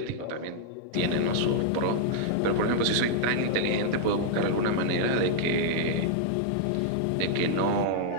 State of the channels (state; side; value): different; both; correlation -0.01